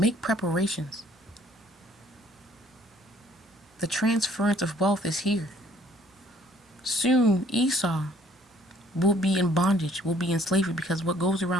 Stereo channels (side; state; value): both; normal; correlation 0.60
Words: preparations. The transference of wealth is here. Soon, Esau will be in bondage, will be in slavery, because what goes